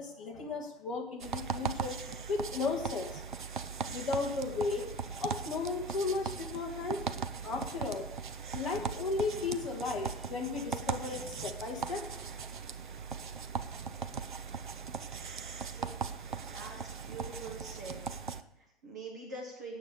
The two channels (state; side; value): normal; both; correlation 0.32